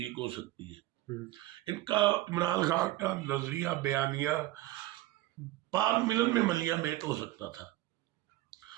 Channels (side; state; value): left; quieter; 16.7 dB